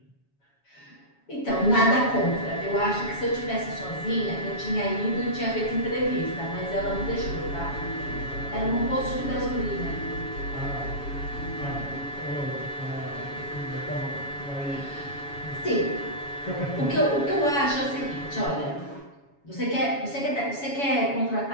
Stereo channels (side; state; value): right; late; 7.1 ms